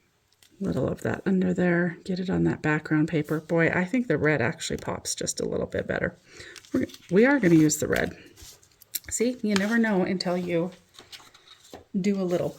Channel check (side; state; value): both; identical; correlation 1.00